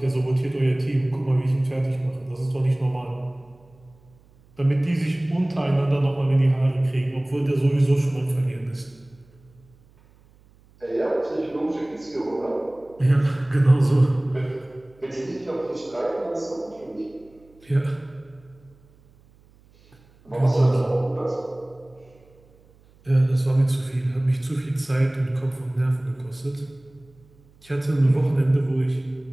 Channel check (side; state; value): right; noise; hum, 29 dB below the sound